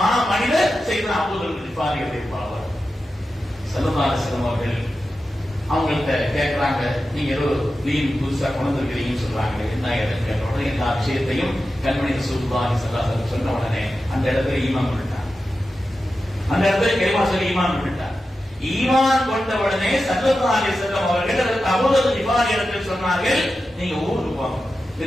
மனிதர் சையதுனா அபூதர் கிஃபாரியுடைய பாவர். ஸல்லல்லாஹு அலைஹி வஸல்லம் அவர்கள் அவங்கள்ட்ட கேட்கிறாங்க, நீங்க ஏதோ தீன் புதுசா கொண்டு இருக்கிறீங்கன்னு சொல்றாங்க, என்ன இடத்துல கேட்ட உடனே எல்லா விஷயத்தையும் கண்மணி ரசூலுல்லாஹி ஸல்லல்லாஹு அலைஹி வஸல்லம் சொன்ன உடனே அந்த இடத்துல ஈமான் கொண்டுட்டாங்க. அந்த இடத்துல கலிமா சொல்லி ஈமான் கொண்டுட்டாங்க. ஈமான் கொண்ட உடனே ஸல்லல்லாஹு அலைஹி வஸல்லம் அவர்கள் அபூதர் கிஃபாரி இடத்தில் சொன்னார்கள், நீங்க ஊருக்கு போங்க,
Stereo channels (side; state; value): both; normal; correlation 0.92